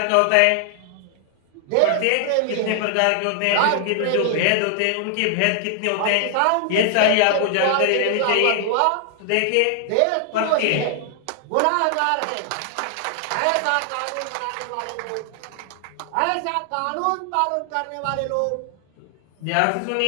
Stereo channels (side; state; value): both; different; correlation 0.00